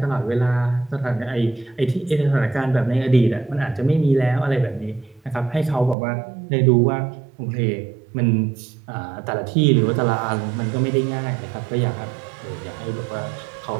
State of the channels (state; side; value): drops out; left; at 6.0 s